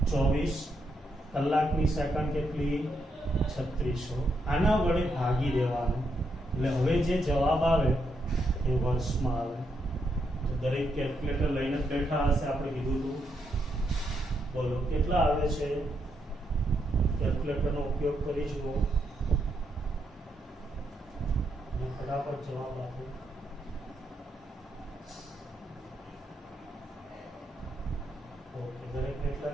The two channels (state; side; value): normal; both; correlation 0.79